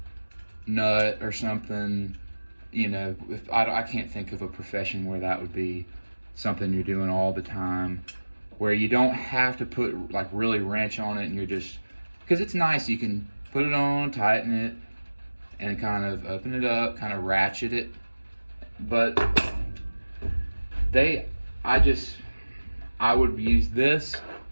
nut or something, you know, I can't think of a profession where that would be something you're doing all the time, where you don't have to put like really wrench on it, and you're just, because it's nice, you can put it on, tighten it, and kind of open it up, kind of ratchet it. But I would use this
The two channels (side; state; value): both; inverted; correlation -1.00